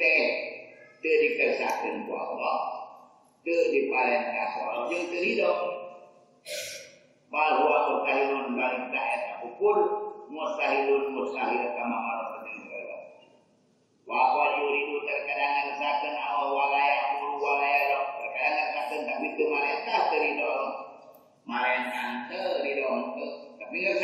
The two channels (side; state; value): both; identical; correlation 1.00